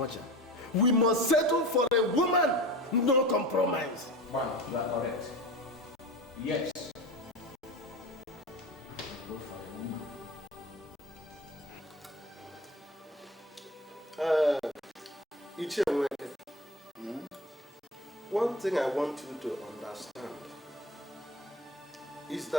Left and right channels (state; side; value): normal; both; correlation 0.32